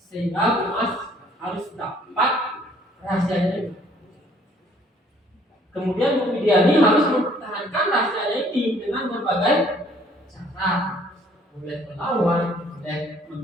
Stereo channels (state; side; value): normal; both; correlation 0.60